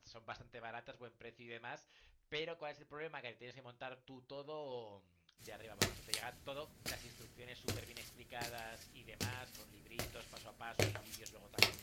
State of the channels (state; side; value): identical; both; correlation 1.00